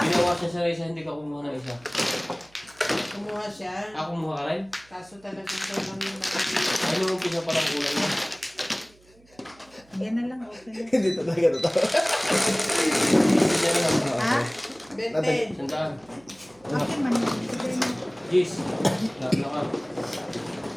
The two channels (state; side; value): noise; right; hum, 29 dB below the sound